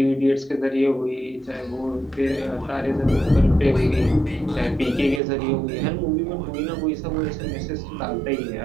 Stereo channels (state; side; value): drops out; left; at 5.2 s